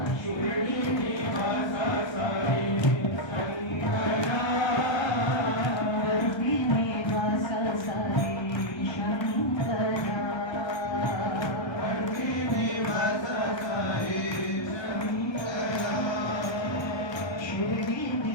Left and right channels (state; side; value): late; right; 1.3 ms